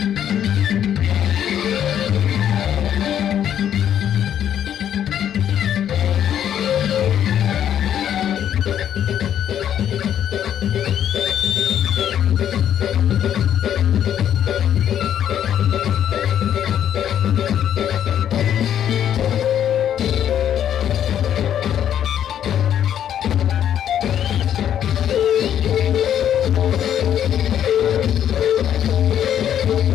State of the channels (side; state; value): right; quieter; 10.0 dB